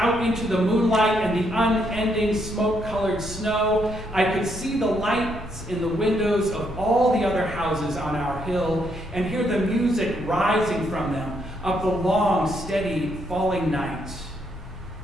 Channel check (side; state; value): both; normal; correlation 0.75